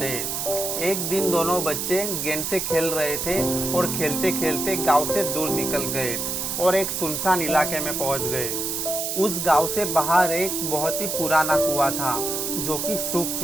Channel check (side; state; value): right; noise; hiss, 2 dB below the sound